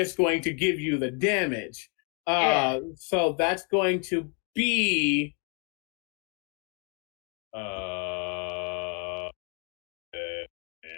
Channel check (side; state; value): right; quieter; 37.1 dB